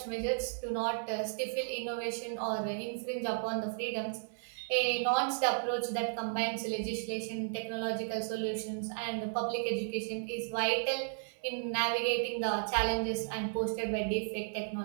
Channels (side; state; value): left; silent; digital silence